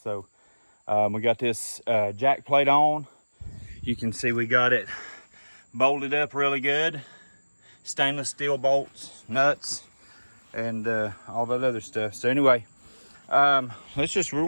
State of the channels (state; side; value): inverted; both; correlation -1.00